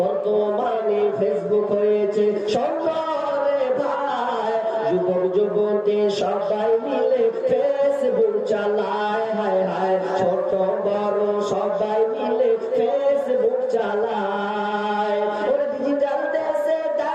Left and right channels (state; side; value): identical; both; correlation 1.00